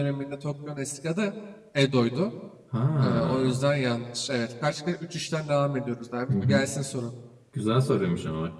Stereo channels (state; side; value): identical; both; correlation 1.00